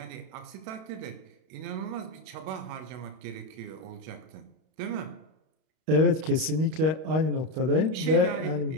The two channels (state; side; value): late; left; 32 ms